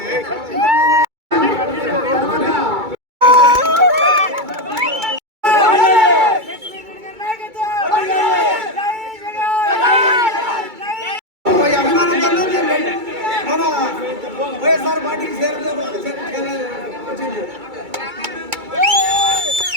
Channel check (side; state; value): left; late; 2.3 ms